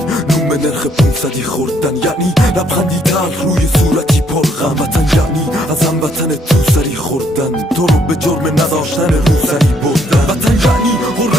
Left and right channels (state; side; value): normal; both; correlation 0.69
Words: نوم نرخ 500 خوردن، یعنی لبخندی تلخ روی صورتی پرغم. وطن یعنی از هموطن تو سری خوردن، تو رو به جرم نداشتن روسری بردن. وطن یعنی